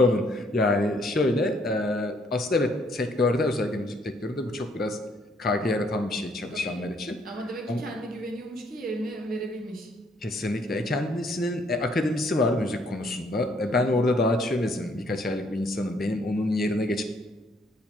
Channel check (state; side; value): normal; both; correlation 0.67